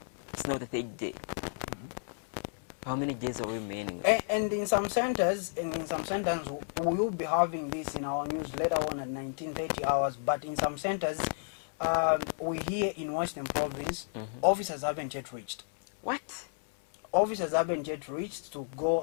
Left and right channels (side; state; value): right; silent; 56 dB below the other